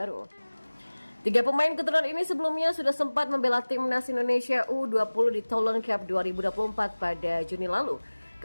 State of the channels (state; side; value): inverted; both; correlation -1.00